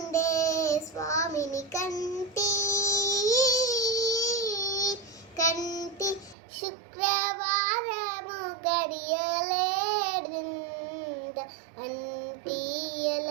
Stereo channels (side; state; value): left; drops out; at 6.4 s